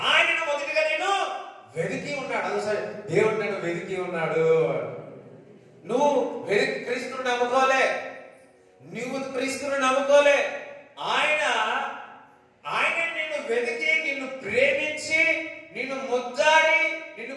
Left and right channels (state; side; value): identical; both; correlation 1.00